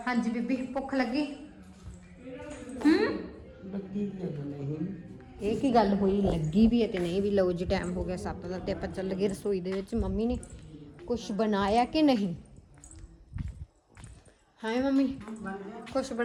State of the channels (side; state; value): both; identical; correlation 1.00